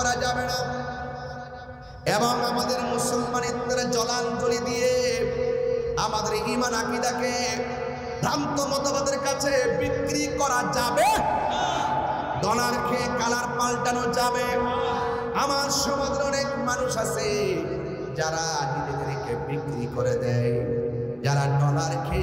যাবে না। এবং আমাদের মুসলমানিত্বের জলাঞ্জলি দিয়ে আমাদের ঈমান আকীদাকে ভ্রান্ত মতবাদের কাছে বিক্রি করা যাবে? ডলার খেয়ে কালার পাল্টানো যাবে? আমার সমাজের অনেক মানুষ আছে যারা নিজেদেরকে বিক্রি করে দেয়, যারা ডলার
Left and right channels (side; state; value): both; identical; correlation 1.00